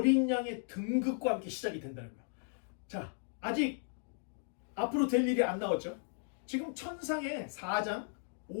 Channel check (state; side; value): silent; right; digital silence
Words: 양의 등극과 함께 시작이 된다는 거예요. 자, 아직 앞으로 될 일이 안 나왔죠. 지금 천상의 4장,